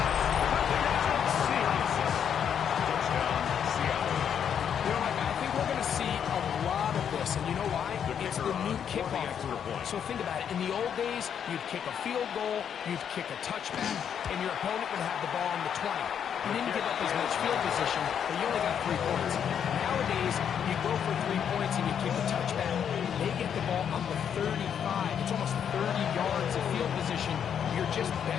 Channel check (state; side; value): quieter; right; 8.3 dB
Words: So think about it. In the old days, you'd kick a field goal, you'd kick a touchback, and your opponent would have the ball on the 20. You didn't give up as much field position, but you only got 3 points. Nowadays, you go for 3 points and you kick a touchback. They get the ball on the 35. It's almost 30 yards of field position. You're just